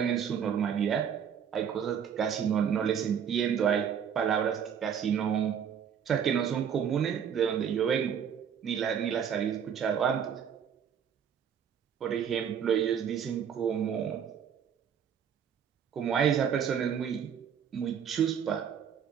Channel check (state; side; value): quieter; left; 8.0 dB